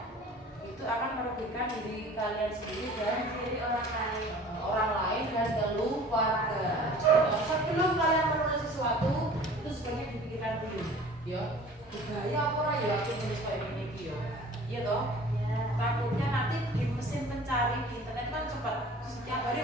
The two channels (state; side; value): normal; both; correlation 0.46